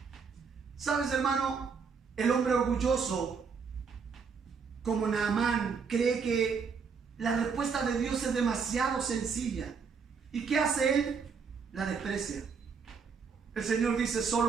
¿Sabes, hermano? El hombre orgulloso, como Naamán, cree que la respuesta de Dios es demasiado sencilla. ¿Y qué hace él? La desprecia. El Señor dice:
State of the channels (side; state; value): left; quieter; 5.7 dB